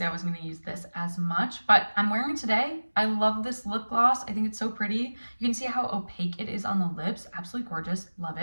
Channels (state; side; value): inverted; both; correlation -1.00